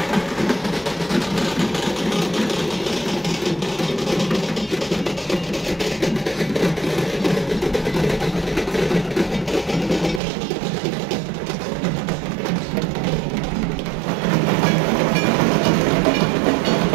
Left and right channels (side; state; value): left; drops out; at 10.2 s